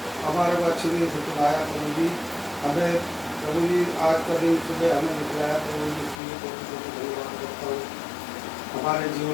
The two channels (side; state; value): right; drops out; at 6.2 s